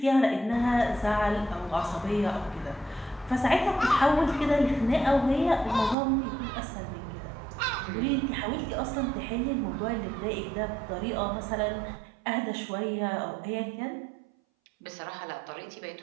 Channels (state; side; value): drops out; left; at 6.0 s